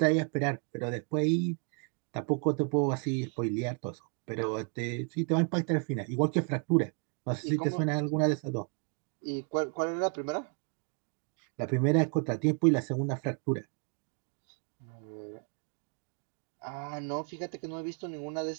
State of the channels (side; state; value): left; quieter; 39.1 dB